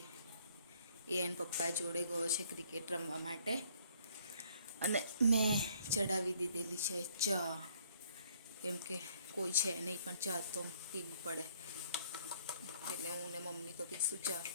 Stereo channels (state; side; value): inverted; both; correlation -0.62